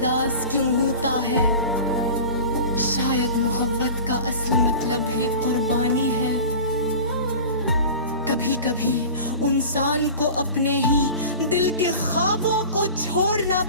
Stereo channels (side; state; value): both; inverted; correlation -0.36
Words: क्यों होता है। शायद मोहब्बत का असल मतलब ही कुर्बानी है। कभी कभी इंसान को अपने ही दिल के ख्वाबों को छोड़ना